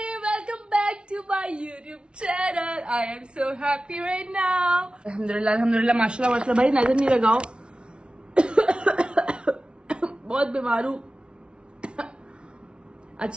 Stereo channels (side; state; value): left; late; 0.057 ms